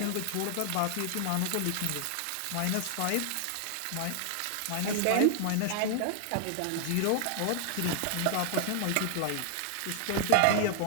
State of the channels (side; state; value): both; different; correlation 0.00